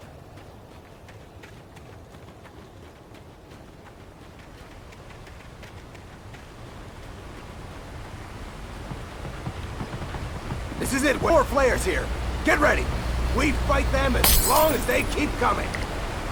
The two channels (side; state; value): both; identical; correlation 1.00